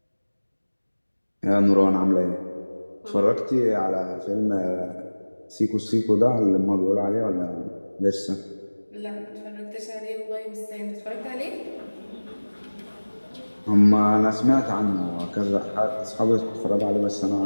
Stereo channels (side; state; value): both; inverted; correlation -1.00